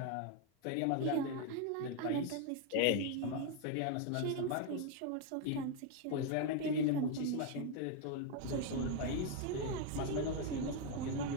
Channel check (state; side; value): different; both; correlation 0.01